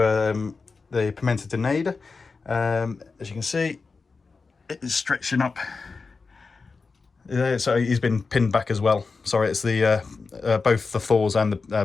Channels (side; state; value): right; quieter; 4.4 dB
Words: the Pimento De Nade. As you can see, it is stretching up. So he's been pinned back as well. Sorry, it's the both the Thors and the